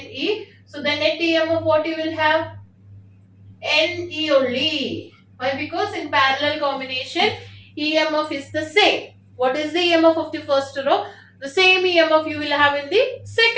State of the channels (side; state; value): both; identical; correlation 1.00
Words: So the net EMF what you will have? NE only. Why? Because in parallel combination EMF is the same. What is the EMF of the first row? The same EMF you will have in the